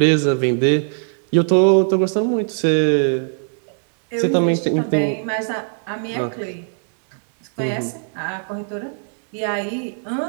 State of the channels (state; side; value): silent; left; digital silence